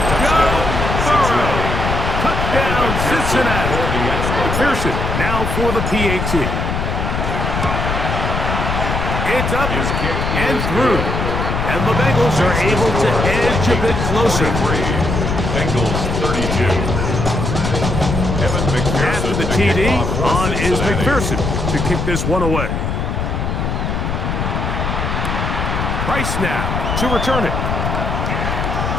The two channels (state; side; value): noise; left; rumble, 1 dB below the sound